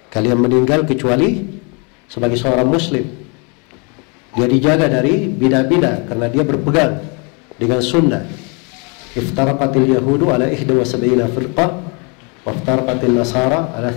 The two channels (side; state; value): right; quieter; 33.3 dB